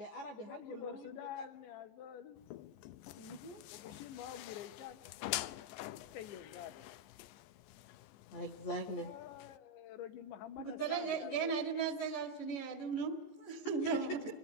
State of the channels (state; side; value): late; right; 14 ms